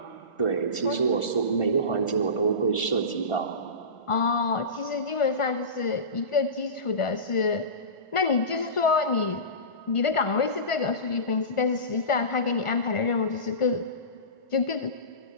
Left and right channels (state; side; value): late; right; 1.4 ms